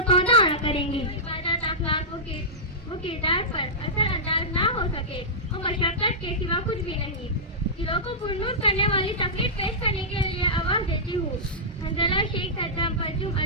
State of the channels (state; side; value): normal; both; correlation -0.15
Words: سودا نہ کریں گے. عبادت اخلاقوں کے وہ کردار پر اثر انداز نہ ہو سکے وہ مشقت کے سوا کچھ بھی نہیں. دلوں کو پرنور کرنے والی تقریر پیش کرنے کے لیے آواز دیتی ہوں. حنظلہ شیخ صدام پرچم